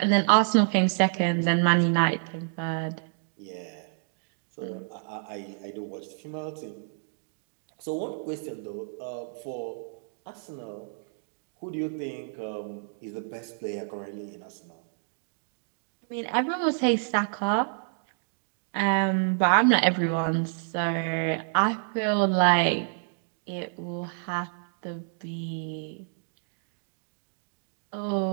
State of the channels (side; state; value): left; silent; digital silence